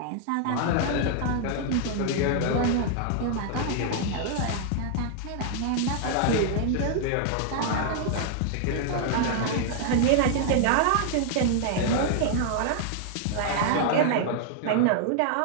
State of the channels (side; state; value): both; different; correlation 0.00